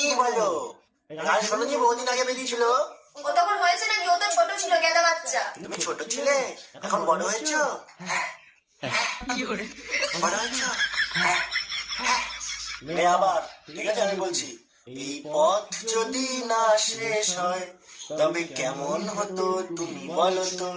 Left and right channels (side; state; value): both; identical; correlation 1.00